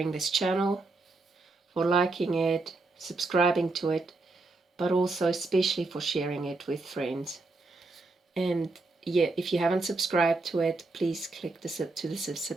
this channel, for liking it, subscribing to it, but also especially for sharing it with friends. And if you haven't subscribed to it, please click the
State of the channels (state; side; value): quieter; left; 3.5 dB